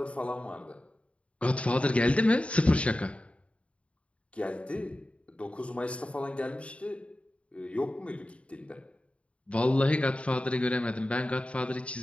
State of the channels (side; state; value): right; late; 0.062 ms